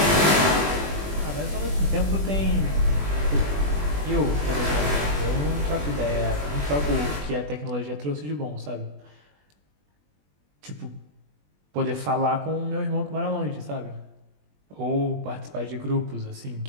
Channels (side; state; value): left; late; 20 ms